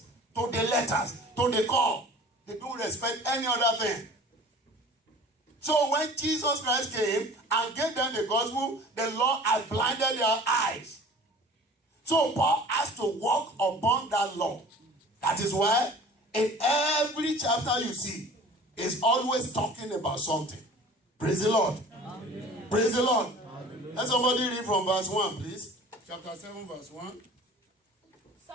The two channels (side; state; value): both; normal; correlation 0.44